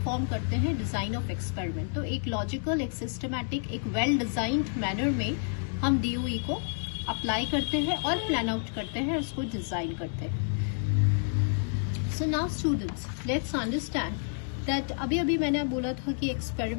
करते हैं डिजाइन ऑफ एक्सपेरिमेंट. तो एक लॉजिकल, एक सिस्टमैटिक, एक वेल डिजाइंड मैनर में हम DOE को अप्लाई करते हैं और प्लान आउट करते हैं, उसको डिजाइन करते हैं. So now students, let's understand that अभी अभी मैंने बोला था कि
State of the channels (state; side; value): silent; right; digital silence